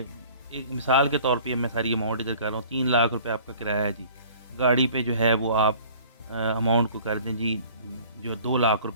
एक मिसाल के तौर पे मैं सारी अमाउंट इधर कर रहा हूँ, 3 लाख रुपए आपका किराया है जी। गाड़ी पे जो है वो आप अमाउंट को कर दें जी, जो 2 लाख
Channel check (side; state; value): both; inverted; correlation -0.50